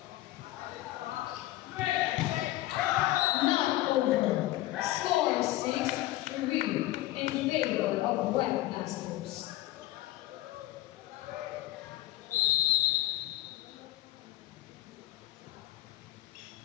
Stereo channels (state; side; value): quieter; right; 16.1 dB